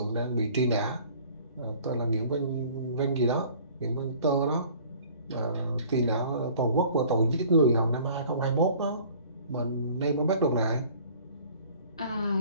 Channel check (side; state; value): both; inverted; correlation -0.51